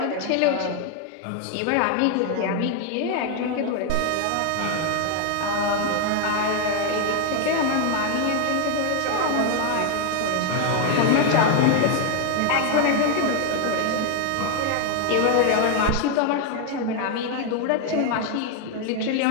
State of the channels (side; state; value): both; different; correlation 0.01